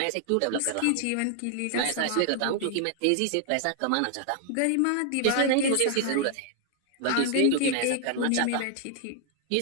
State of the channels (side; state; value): both; different; correlation 0.00